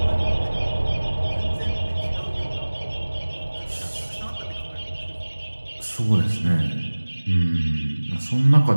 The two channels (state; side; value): inverted; both; correlation -1.00